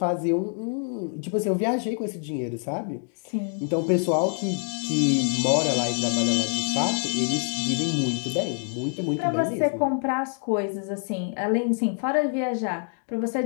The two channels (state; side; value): silent; right; 56 dB below the other